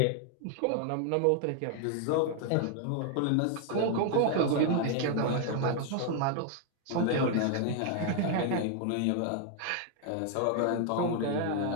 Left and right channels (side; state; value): both; different; correlation 0.00